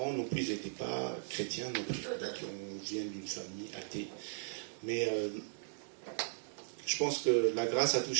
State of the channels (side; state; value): left; silent; digital silence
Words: non plus, ils n'étaient pas chrétiens non plus. Donc on vient d'une famille athée. Mais je pense que la grâce a